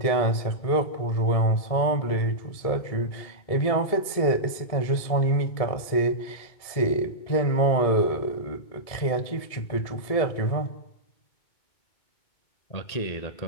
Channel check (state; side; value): late; right; 1.7 ms